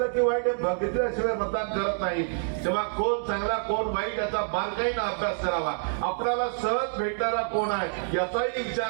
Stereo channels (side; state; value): left; silent; digital silence